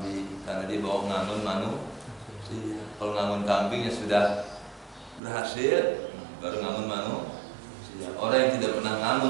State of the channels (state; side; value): drops out; left; at 5.2 s